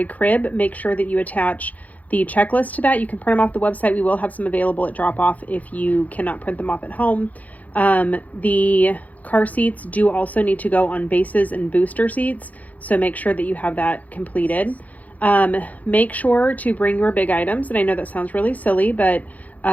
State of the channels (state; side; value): late; right; 0.077 ms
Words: crib, make sure that you attach the checklist to that. You can print them off the website. We will have some available at drop off if you cannot print them off at home. The car seats do also need to go on bases and booster seats, so make sure that you have that completed. Make sure to bring your big items, and I know that sounds really silly, but